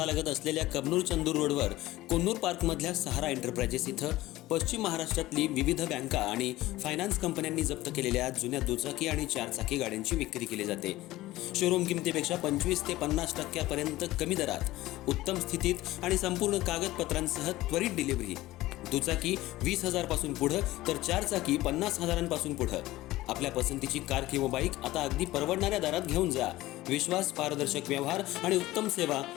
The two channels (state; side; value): quieter; right; 17.2 dB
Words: असलेल्या कबनूर चंदूर रोडवर कोन्नूर पार्कमधल्या सहारा एंटरप्राइजेस इथं पश्चिम महाराष्ट्रातली विविध बँका आणि फायनान्स कंपन्यांनी जप्त केलेल्या जुन्या दुचाकी आणि चारचाकी गाड्यांची विक्री केली जाते. शोरूम किमतीपेक्षा 25 ते 50% कमी दरात, उत्तम स्थितीत आणि संपूर्ण कागदपत्रांसह त्वरित डिलिव्हरी. दुचाकी 20,000 पासून पुढे तर चारचाकी 50,000 पुढे. आपल्या पसंतीची कार किंवा बाईक आता अगदी परवडणाऱ्या दरात घेऊन जा. विश्वास, पारदर्शक व्यवहार आणि उत्तम सेवा